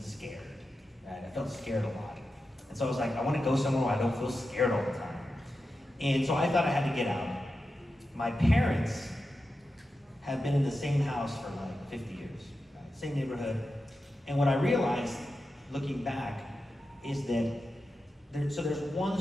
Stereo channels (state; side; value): normal; both; correlation 0.91